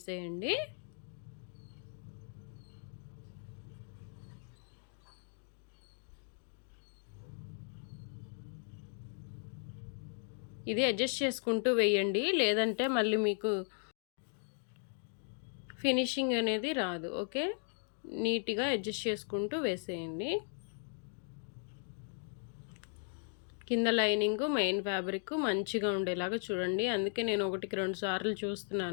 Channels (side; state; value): right; silent; 53 dB below the other